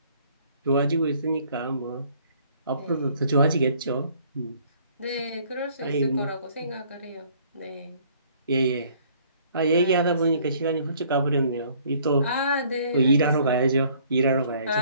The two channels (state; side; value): inverted; both; correlation -0.59